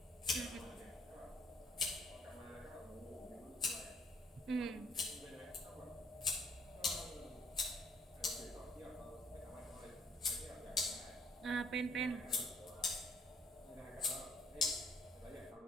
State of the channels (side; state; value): both; normal; correlation 0.61